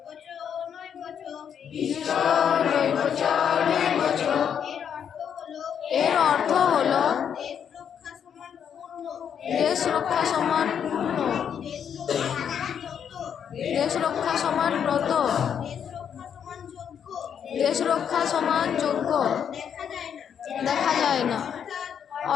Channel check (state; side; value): quieter; right; 8.2 dB